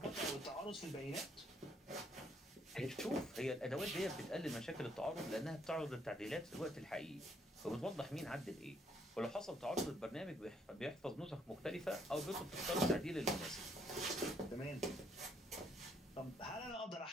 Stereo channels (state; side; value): normal; both; correlation 0.69